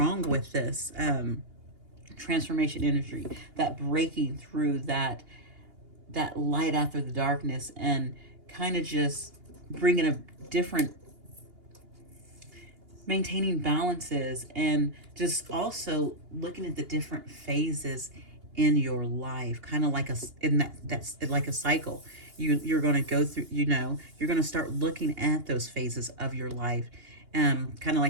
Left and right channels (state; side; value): late; left; 2.8 ms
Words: with this transformation energy, that breaking through that light after the darkness, and kind of just bringing a different, maintaining balances, and just also looking at the different phases in your life, kind of like a, in that's like a cycle. You're going to go through, you know, you're going to start looking at those phases of your life, kind of